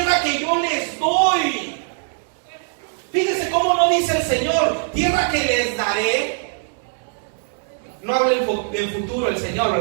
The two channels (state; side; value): silent; left; 65 dB below the other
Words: que yo les doy. Fíjense cómo no dice el Señor: tierra que les daré. No habla en futuro el Señor,